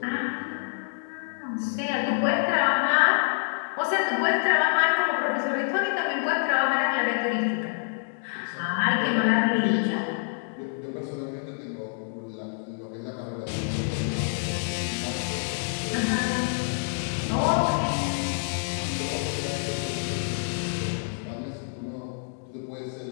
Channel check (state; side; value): silent; right; digital silence